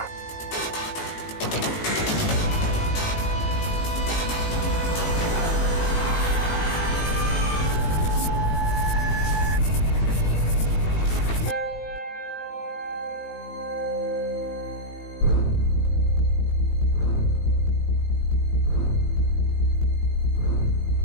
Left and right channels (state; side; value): late; right; 19 ms